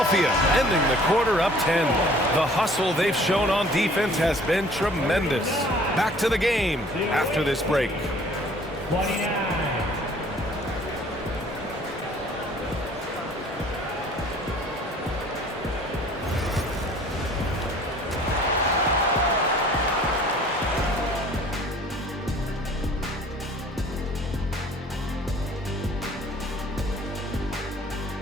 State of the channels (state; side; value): normal; both; correlation 0.52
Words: ending the quarter up 10. The hustle they've shown on defense has been tremendous. Back to the game after this break. 29.